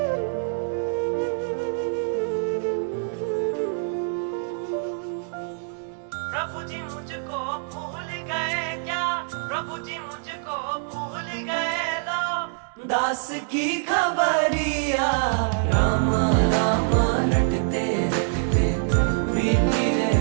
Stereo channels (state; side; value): silent; left; digital silence